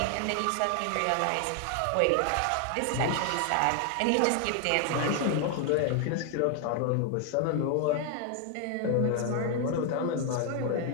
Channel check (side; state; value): both; different; correlation 0.00